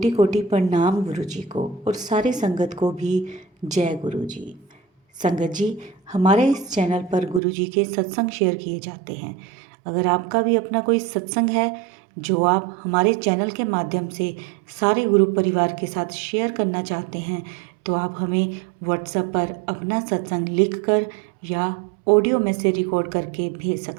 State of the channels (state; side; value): drops out; left; at 7.4 s